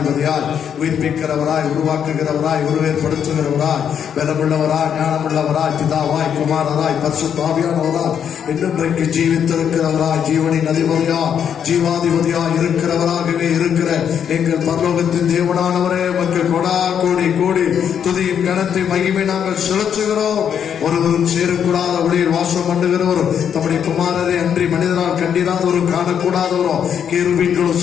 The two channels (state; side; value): quieter; right; 8.3 dB